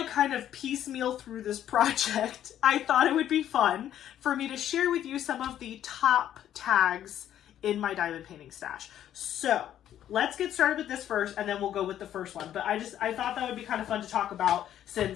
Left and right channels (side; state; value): right; quieter; 11.1 dB